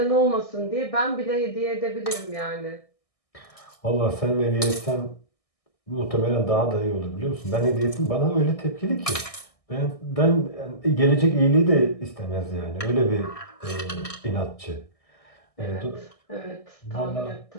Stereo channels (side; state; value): right; late; 1.6 ms